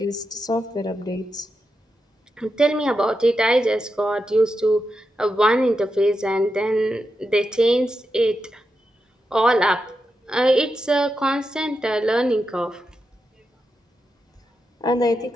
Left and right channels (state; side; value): normal; both; correlation 0.87